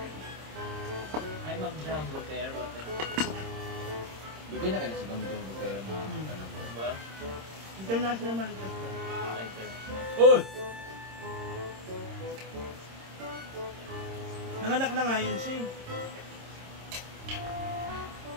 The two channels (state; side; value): late; left; 26 ms